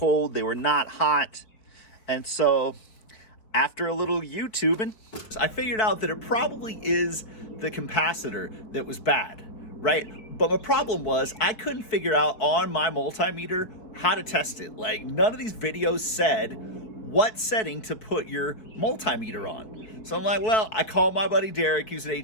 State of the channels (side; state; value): right; late; 4.6 ms